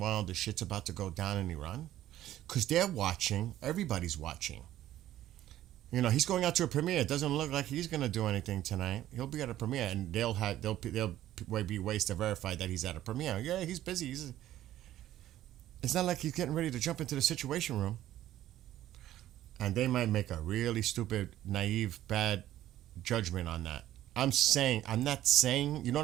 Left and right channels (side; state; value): left; quieter; 13.3 dB